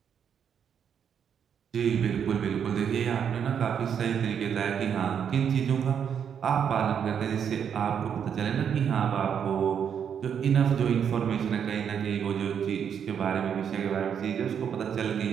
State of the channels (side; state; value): left; quieter; 7.9 dB